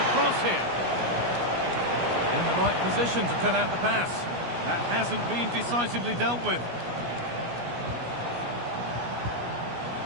cross here. In the right position to cut out the pass. That hasn't been decisively dealt with.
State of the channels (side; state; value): left; late; 17 ms